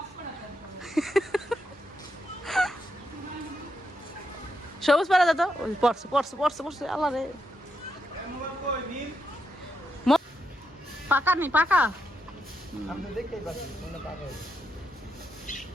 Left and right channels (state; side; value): normal; both; correlation 0.82